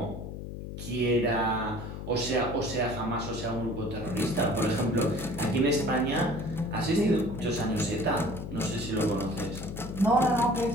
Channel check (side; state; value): left; noise; hum, 8 dB below the sound